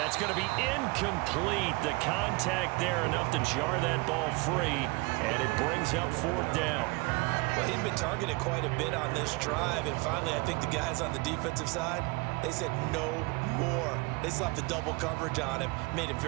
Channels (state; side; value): quieter; left; 25.9 dB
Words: going to be incomplete. The contact there enough to jar that ball free, and it brings up 4th down. Well, he'd been targeted quite a bit on this drive, and finally I think the guys on the defensive side, they said no more. They slapped the double coverage on him, made it